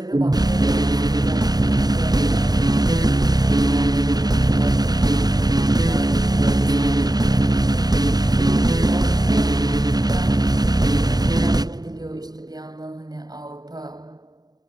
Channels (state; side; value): late; left; 0.19 ms